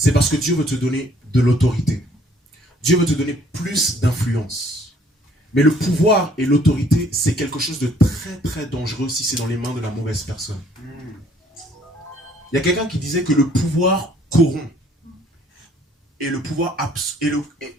parce que Dieu veut te donner de l'autorité. Dieu veut te donner plus d'influence. Mais le pouvoir et l'autorité, c'est quelque chose de très très dangereux si c'est dans les mains de la mauvaise personne. Il y a quelqu'un qui disait que le pouvoir corrompt. Et le pouvoir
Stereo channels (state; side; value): normal; both; correlation 0.60